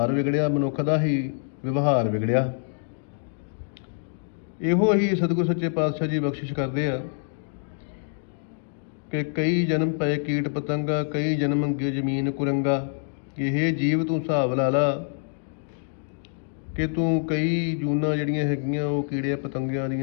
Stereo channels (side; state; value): right; silent; digital silence